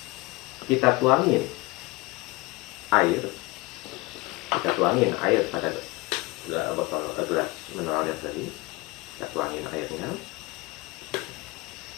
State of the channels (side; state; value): right; quieter; 22.9 dB